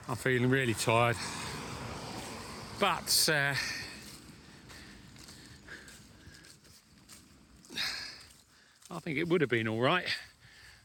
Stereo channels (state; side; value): identical; both; correlation 1.00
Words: I'm feeling really tired, but I think it would have been all right.